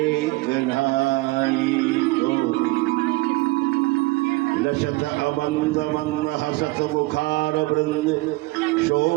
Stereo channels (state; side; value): quieter; left; 22.2 dB